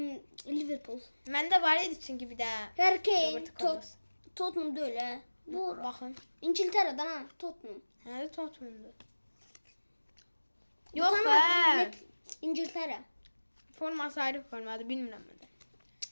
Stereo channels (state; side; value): inverted; both; correlation -1.00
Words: Liverpool. Məndə var idi çünki bir də. Harry Kane, Roberto Carlos. Tottenham da öyle. Bu Baxın. İngiltere'den ha, Tottenham. Hələ Tottenham'dır. Bu Yox tane be. Lig- İngiltere. Forması ayrı formadır, bilmirəm mən də.